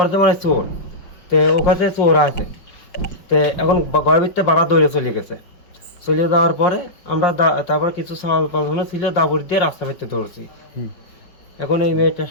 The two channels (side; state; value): right; late; 5.6 ms